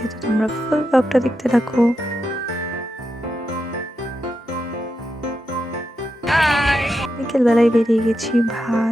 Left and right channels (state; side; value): normal; both; correlation 0.87